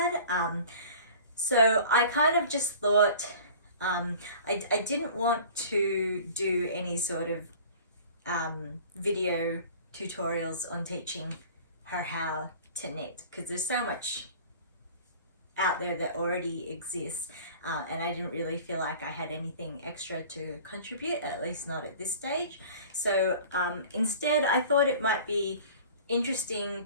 So I kind of just thought, I didn't want to do any sort of video tutorials on teaching her how to knit, because there's so much out there that already exists, and I didn't really feel like I had anything extra to contribute, at least not at this stage. So instead I thought it might be interesting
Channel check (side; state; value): both; inverted; correlation -0.44